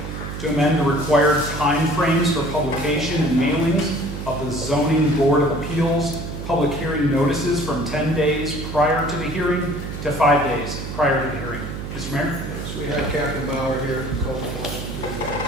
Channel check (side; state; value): right; noise; hum, 7 dB below the sound